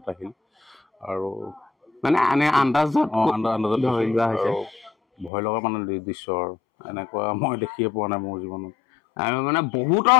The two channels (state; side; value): drops out; right; at 5.3 s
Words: শিল আৰু মানে আন্দাজত ভয় লগা মানে দৃশ্য আৰু এনেকুৱা মই দেখিয়ে পোৱা নাই মোৰ জীৱনত আৰু মানে বহুতৰ